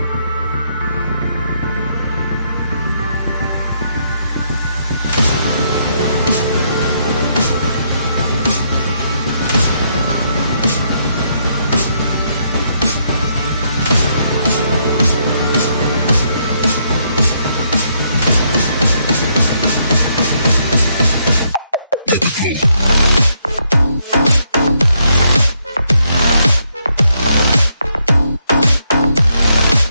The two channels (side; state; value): both; inverted; correlation -0.75